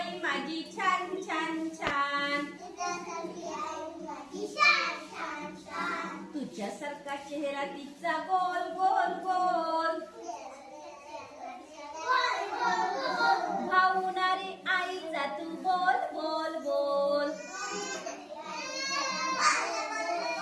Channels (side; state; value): both; identical; correlation 1.00